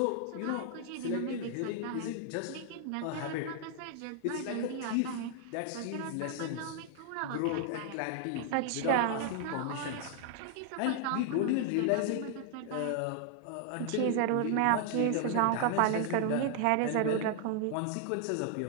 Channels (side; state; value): both; different; correlation 0.00